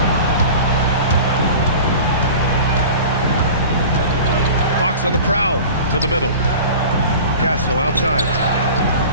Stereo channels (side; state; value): both; inverted; correlation -0.38